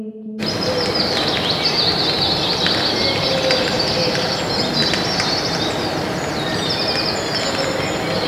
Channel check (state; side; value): identical; both; correlation 1.00